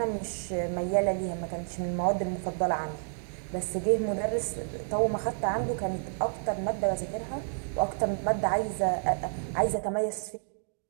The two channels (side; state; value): left; silent; digital silence